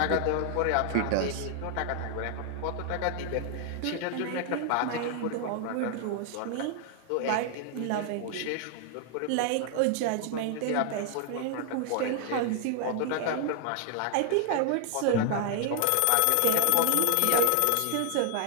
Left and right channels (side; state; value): both; different; correlation 0.00